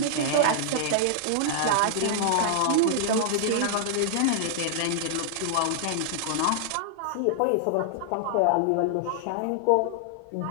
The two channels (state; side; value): different; both; correlation -0.01